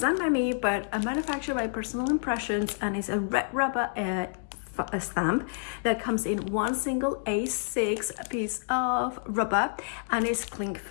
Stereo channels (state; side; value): silent; right; digital silence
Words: by me, but manufactured by Personal Impressions, and is a red rubber a stamp that comes in one single A6 piece of rubber and is cling